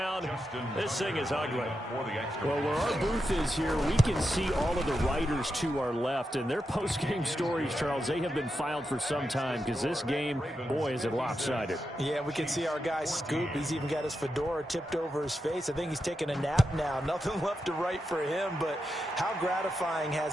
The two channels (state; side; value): normal; both; correlation 0.87